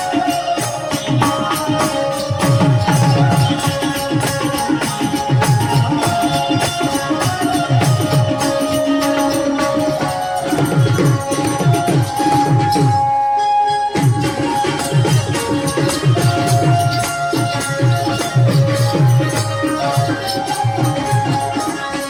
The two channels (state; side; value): noise; left; hum, 29 dB below the sound